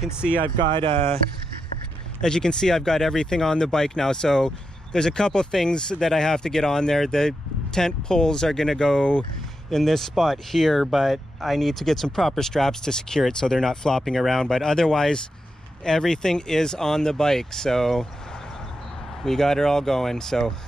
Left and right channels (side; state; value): both; normal; correlation 0.86